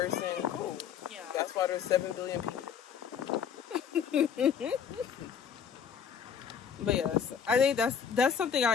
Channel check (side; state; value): right; quieter; 7.6 dB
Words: cool. Yeah. That's why there's 7 billion people. But yes, I think that's something